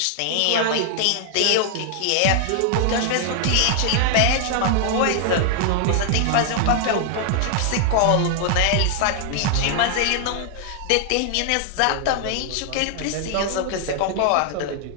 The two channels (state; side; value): different; both; correlation 0.00